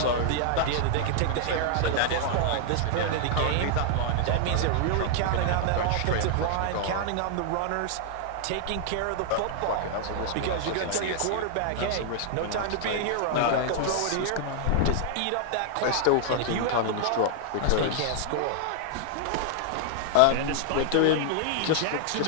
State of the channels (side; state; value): both; different; correlation -0.01